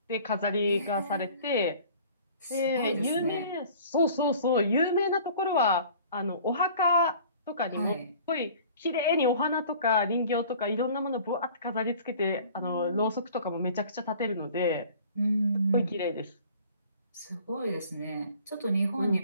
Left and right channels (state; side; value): inverted; both; correlation -0.49